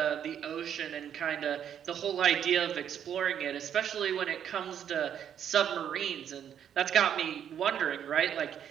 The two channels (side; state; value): left; quieter; 9.1 dB